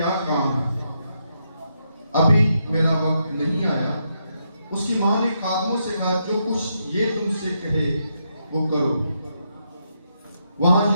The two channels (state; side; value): inverted; both; correlation -0.81